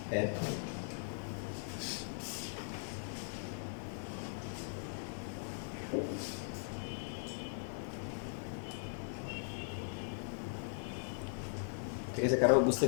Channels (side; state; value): right; silent; 51 dB below the other